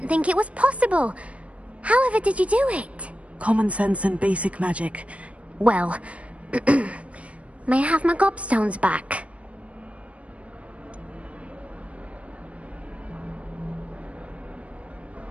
think it was possible. However did you do it? Common sense and basic magic. Well, may I have my gobstones back?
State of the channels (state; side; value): late; left; 0.064 ms